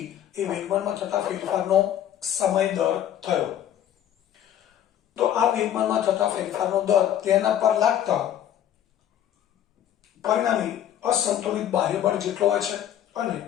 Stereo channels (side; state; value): right; quieter; 10.7 dB